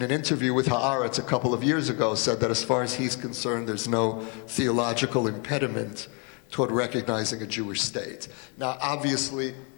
an interview with Haaretz a couple of years ago said that as far as he's concerned, there's no theological impediment toward recognizing a Jewish state. Now, obviously,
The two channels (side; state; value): right; quieter; 35.1 dB